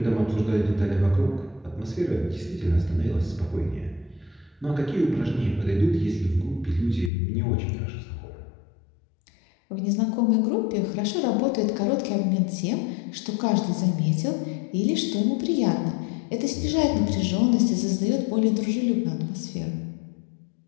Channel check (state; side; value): drops out; right; at 7.1 s